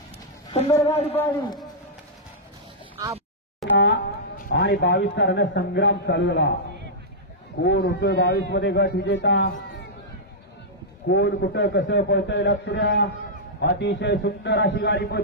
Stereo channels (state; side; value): normal; both; correlation -0.11